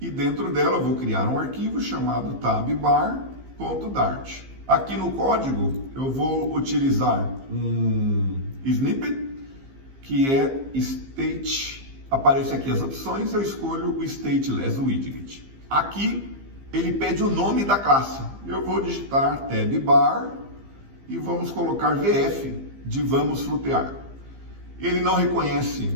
dentro dela eu vou criar um arquivo chamado tabbar.dart. Aqui no código eu vou utilizar um snippet, que é state, aparece aqui as opções, eu escolho o stateless widget. Aqui ele pede o nome da classe, eu vou digitar tabbar e vamos colocar VF de vamos flutear. Ele não reconhece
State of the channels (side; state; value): left; late; 15 ms